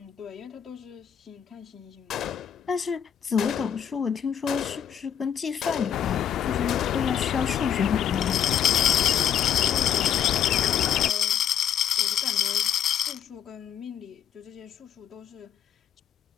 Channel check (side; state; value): right; quieter; 8.9 dB